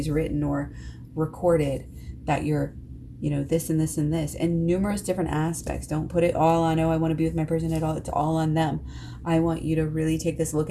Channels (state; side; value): identical; both; correlation 1.00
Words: written or recorded that you're, this and this and this, and numerous different aspects. Don't put it all on, oh, I want to be with my person at all. It's all on them. I want you to really take this look